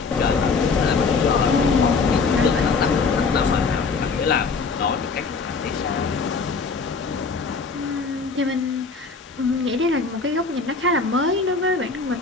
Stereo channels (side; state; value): right; quieter; 4.6 dB